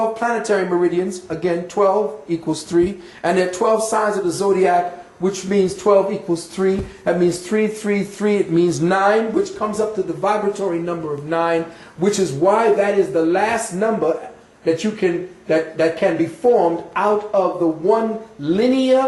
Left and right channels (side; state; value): both; identical; correlation 1.00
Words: planetary meridians. Again, 12 equals 3. And there are 12 signs of the zodiac, which means 12 equals 3. That means 3, 3, 3. It means 9, which comes up to the vibratory number of 9, which is why that is the last number that you can that can be formed out of the one